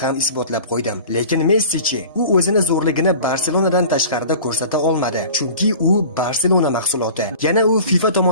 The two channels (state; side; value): inverted; both; correlation -0.41